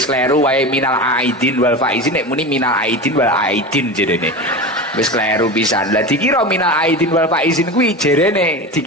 kleru wae minal aidin wal faizin, nek muni minal aidin wal aidin jerene. Wis kleru pisan. Lah dikira minal aidin wal faizin kuwi jerene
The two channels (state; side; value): normal; both; correlation 0.27